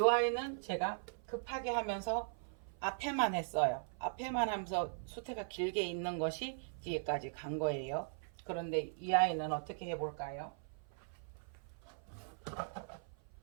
제가 급하게 하면서 앞에만 했어요. 앞에만 하면서 수태가 길게 있는 것이 뒤에까지 간 거예요. 그런데 이 아이는 어떻게 해볼까요?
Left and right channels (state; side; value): silent; left; 52 dB below the other